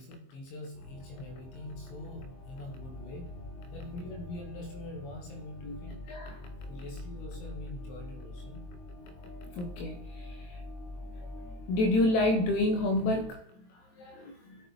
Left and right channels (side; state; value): right; late; 23 ms